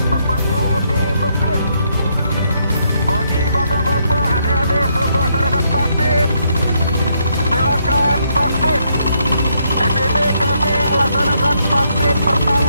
tepatnya di masjid. Bagi bapak-bapak, adik-adik belum melaksanakan vaksin, silakan vaksin. Di sini kami melaksanakan vaksin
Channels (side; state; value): both; inverted; correlation -0.75